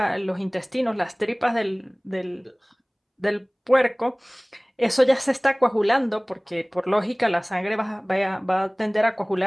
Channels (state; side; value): identical; both; correlation 1.00